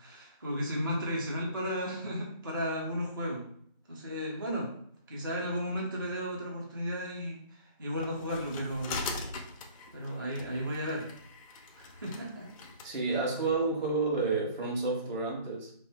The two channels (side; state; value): both; inverted; correlation -0.51